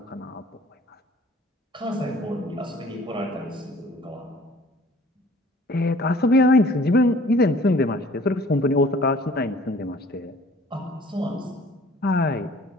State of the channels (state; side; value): normal; both; correlation 0.52